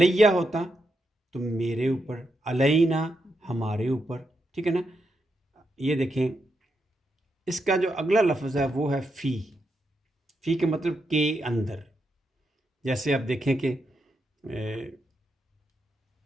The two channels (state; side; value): normal; both; correlation 0.83